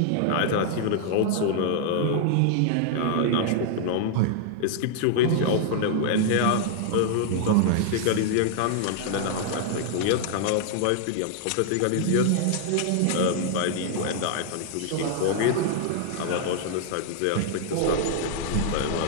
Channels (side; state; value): both; different; correlation 0.00